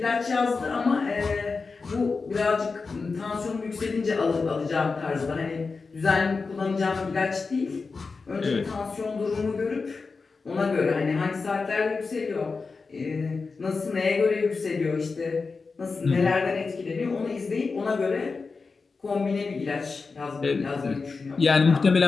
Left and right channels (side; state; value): right; quieter; 4.4 dB